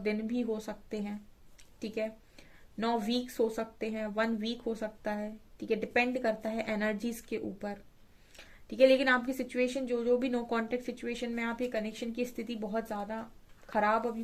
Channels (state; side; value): identical; both; correlation 1.00